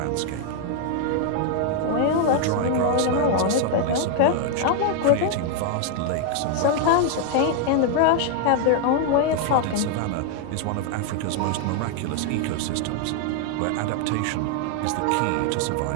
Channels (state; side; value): different; both; correlation 0.00